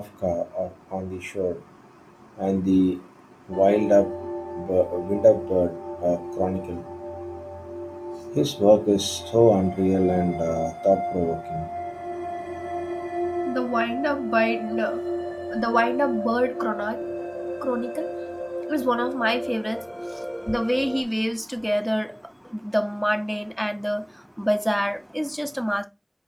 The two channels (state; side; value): identical; both; correlation 1.00